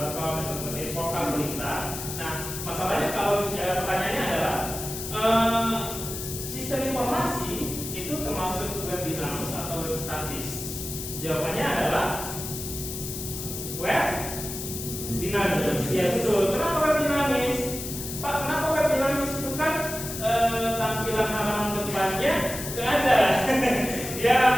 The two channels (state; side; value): noise; left; hiss, 7 dB below the sound